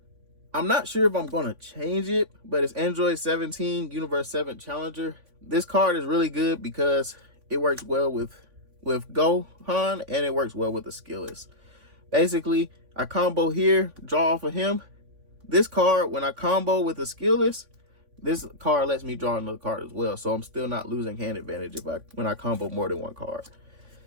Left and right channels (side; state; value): left; late; 3.5 ms